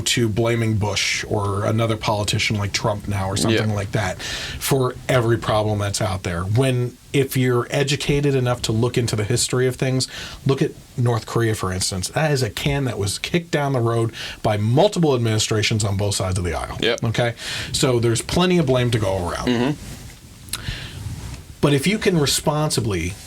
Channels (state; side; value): identical; both; correlation 1.00